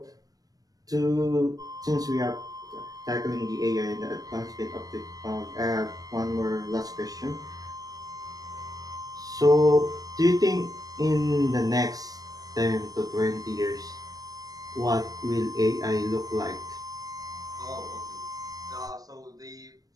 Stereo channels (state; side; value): late; left; 0.18 ms